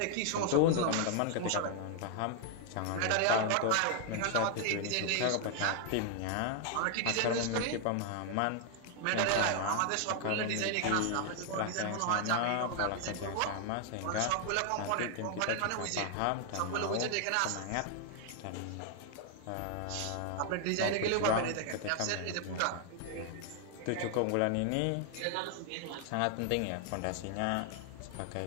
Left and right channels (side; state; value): both; different; correlation 0.00